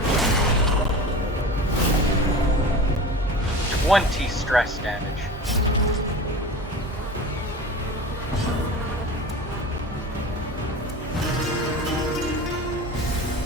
20 stress damage.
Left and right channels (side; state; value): both; normal; correlation 0.34